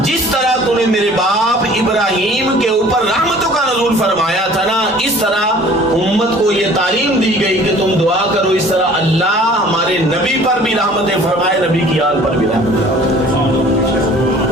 جس طرح تو نے میرے باپ ابراہیم کے اوپر رحمتوں کا نزول فرمایا تھا نا، اس طرح امت کو یہ تعلیم دی گئی کہ تم دعا کرو اس طرح اللہ ہمارے نبی پر بھی رحمتیں فرمائے، نبی کی آل پر بھی رحمتیں.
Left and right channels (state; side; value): normal; both; correlation 0.50